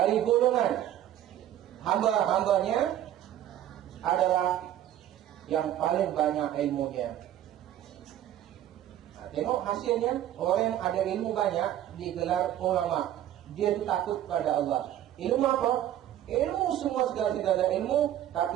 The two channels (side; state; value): left; quieter; 11.9 dB